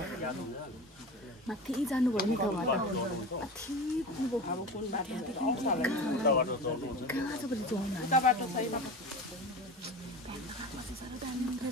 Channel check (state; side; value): normal; both; correlation 0.30